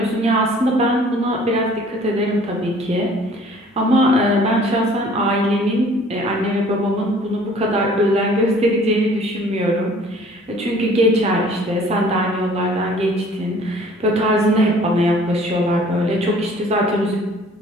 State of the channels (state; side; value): normal; both; correlation 0.53